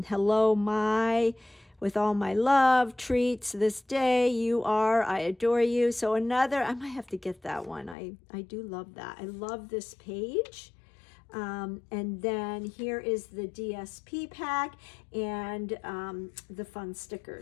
Hello, my, with all my love, treats this day, you are, I adore you. So another, I might have to get that one. I do love that. I love this page. And then here is the DSP pack and the fun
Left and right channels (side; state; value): right; drops out; at 8.0 s